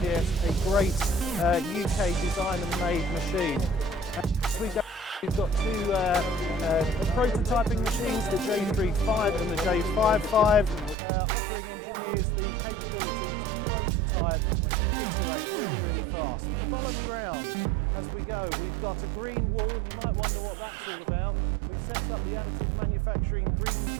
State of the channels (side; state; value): left; drops out; at 11.0 s